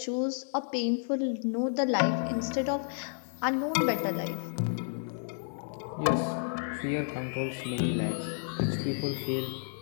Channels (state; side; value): silent; right; digital silence